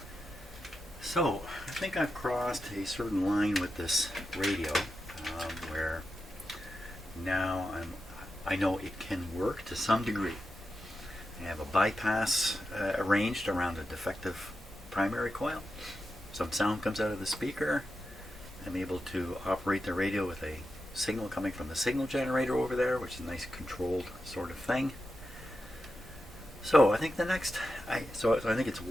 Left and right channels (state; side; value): normal; both; correlation 0.89